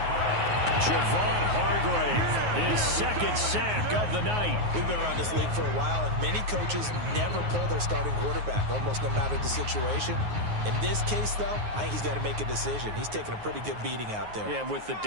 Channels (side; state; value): left; late; 9.5 ms